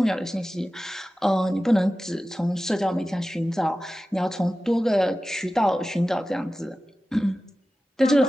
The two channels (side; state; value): both; normal; correlation 0.95